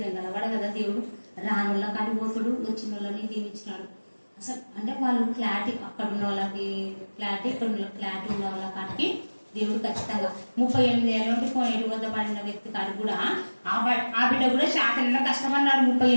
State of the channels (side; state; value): both; inverted; correlation -1.00